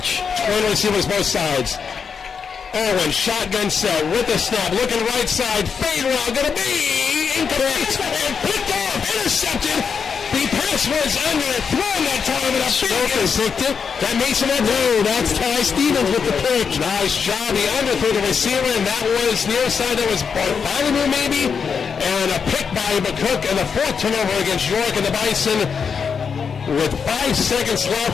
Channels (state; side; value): quieter; right; 6.2 dB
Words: Twin receivers both sides. Owen, shotgun set with the snap, looking right side, fade route, gonna be incomplete, and picked off, intercepted. The pass was under, thrown that time, and a picked it. That Mason Edwards. No, that's Ty Stevens with the pick. Nice job. He underthrew the receiver, and that was near side. That was Bartholomew maybe, and a pick by McCook, and the 4th turnover against York, and the Bison, with 5 seconds left,